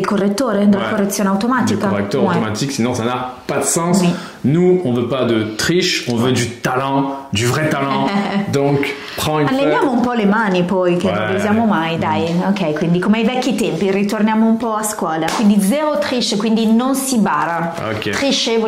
correttore, della correzione du automatica. correcteur Ouais. automatique, sinon ça n'a pas de sens. Oui. Nous, on veut pas de triche, on veut du talent, du vrai talent. Donc, prends une feuille. Alleniamo un po' le mani poi, che non le Ouais. usiamo mai, dai. Ok, quindi come ai vecchi tempi, ritorniamo un po' a scuola. Quindi zero triche, quindi non si bara. Ok. Triche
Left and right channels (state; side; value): identical; both; correlation 1.00